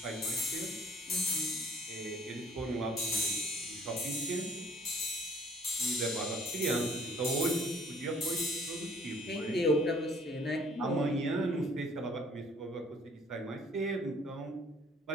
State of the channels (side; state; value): both; normal; correlation 0.56